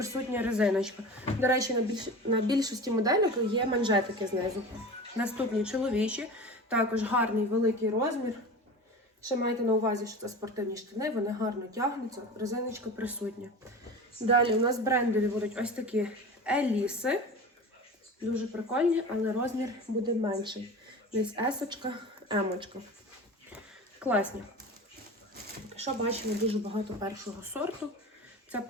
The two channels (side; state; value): both; normal; correlation 0.33